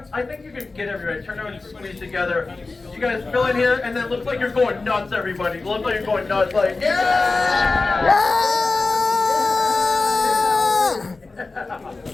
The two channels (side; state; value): right; quieter; 3.7 dB